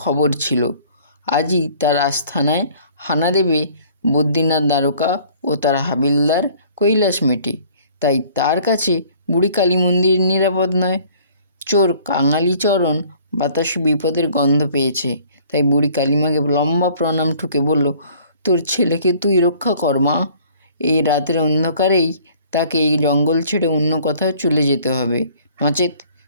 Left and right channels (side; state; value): both; inverted; correlation -0.54